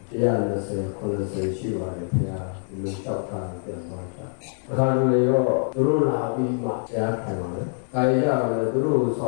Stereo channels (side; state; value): right; silent; 62 dB below the other